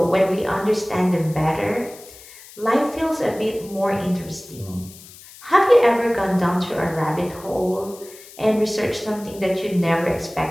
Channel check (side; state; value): left; noise; hiss, 20 dB below the sound